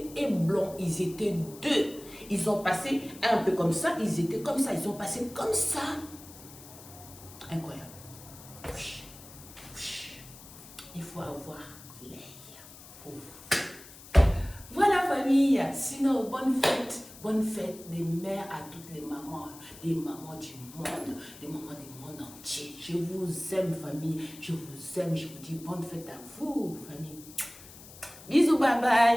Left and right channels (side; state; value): left; noise; hiss, 18 dB below the sound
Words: et blanc, ils étaient deux. Ils ont passé un peu comme ça, ils étaient comme ça, ils ont passé comme ça. Incroyable. Il faut avoir l'œil. Voilà, famille. Sinon, bonne fête des mères à toutes les mamans du monde, des mamans du monde entier. Je vous aime, famille. Je vous aime. Je vous dis bonne fête à vous, famille. Bisous, bye